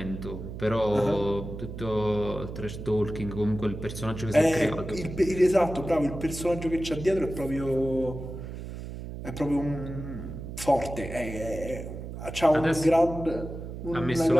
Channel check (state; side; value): noise; right; hum, 9 dB below the sound